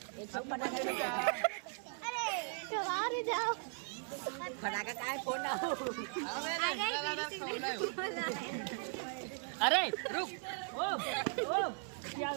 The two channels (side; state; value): left; silent; 52 dB below the other